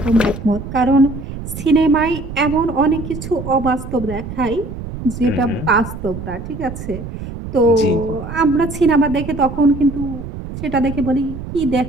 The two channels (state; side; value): noise; right; rumble, 9 dB below the sound